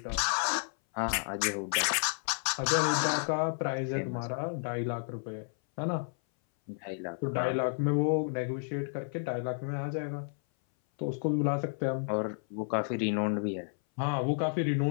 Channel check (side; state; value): right; silent; 57 dB below the other